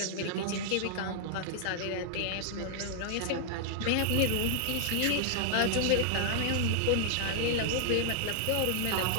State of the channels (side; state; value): both; different; correlation -0.01